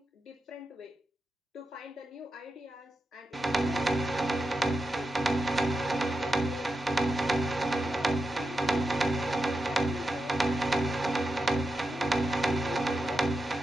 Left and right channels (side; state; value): both; normal; correlation 0.89